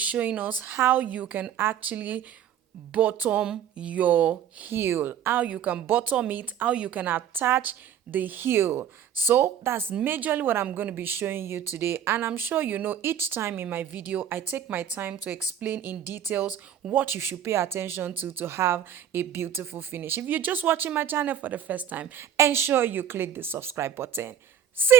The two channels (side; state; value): left; quieter; 9.3 dB